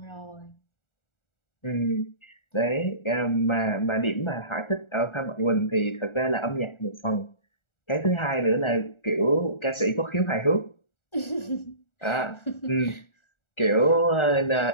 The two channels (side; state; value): right; late; 1.4 ms